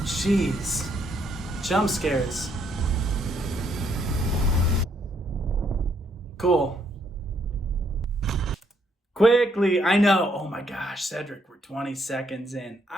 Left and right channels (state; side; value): normal; both; correlation 0.72